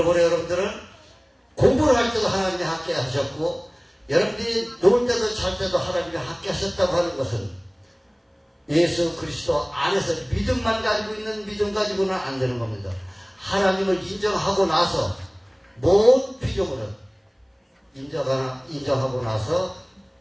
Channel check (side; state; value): both; identical; correlation 1.00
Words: 여러분들은 공부를 할 때도 하나님이 함께 하셨고 여러분들이 놀 때도 잘 때도 하나님이 함께 하셨다고 하는 것은 예수 그리스도 안에서 믿음만 가지고 있는 믿음 가지고는 안 되는 겁니다. 하나님을 인정하고 나서 모든 피조물은 인정하고 나서